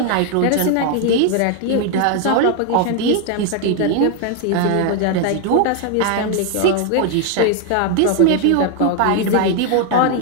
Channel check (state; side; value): different; both; correlation 0.00